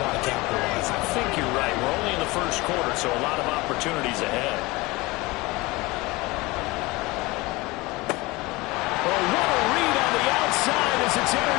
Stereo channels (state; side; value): quieter; right; 22.5 dB